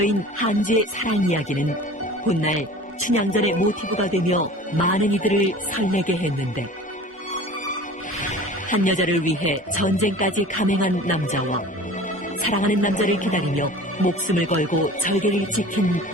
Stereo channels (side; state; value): both; normal; correlation 0.41